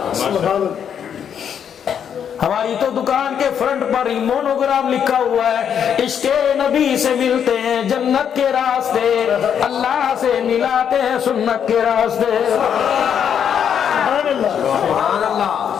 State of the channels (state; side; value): quieter; right; 8.3 dB